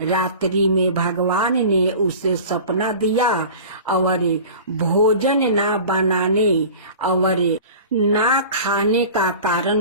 में भगवान ने उसे सपना दिया और भोजन ना बनाने और ना खाने का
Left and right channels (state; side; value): inverted; both; correlation -0.39